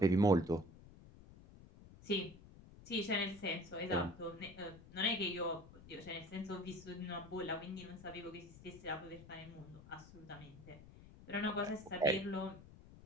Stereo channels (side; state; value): left; noise; rumble, 19 dB below the sound